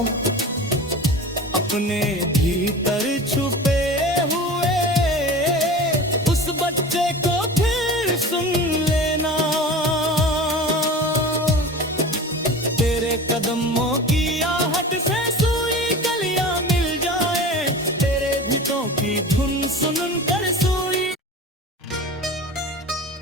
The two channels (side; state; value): both; normal; correlation 0.35